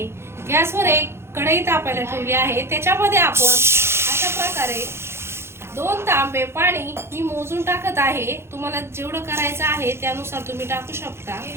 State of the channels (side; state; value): left; late; 0.12 ms